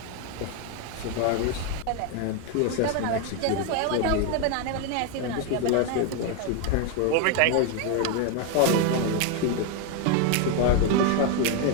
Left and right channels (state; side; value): different; both; correlation 0.01